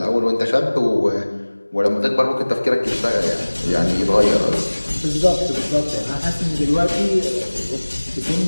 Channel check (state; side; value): inverted; both; correlation -1.00